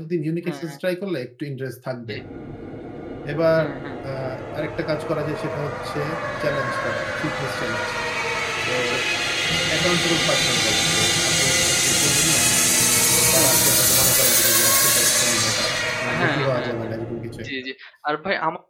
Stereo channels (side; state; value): both; identical; correlation 1.00